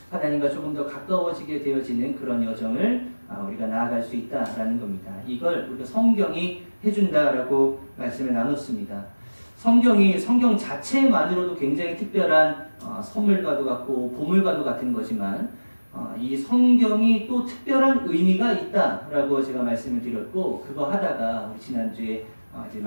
하나님과 조금 더 가까워지게 되어지는 그런 여정을 우리가 나아갈 수 있다라는 겁니다. 이걸 우리가 성경이 해준다라고 말씀을 나눴습니다. 성경 자체만으로도 굉장히 특별한 선물과도 같고 보물과도 같은 거지만, 이 성경이 또 특별한 의미가 있다라고 제가 말씀을 드렸고, 그거 하다가 우리 지난주에 이제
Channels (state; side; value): inverted; both; correlation -1.00